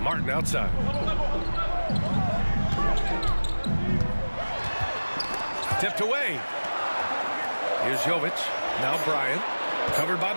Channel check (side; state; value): both; inverted; correlation -1.00